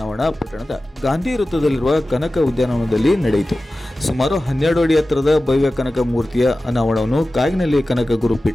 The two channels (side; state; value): both; normal; correlation 0.95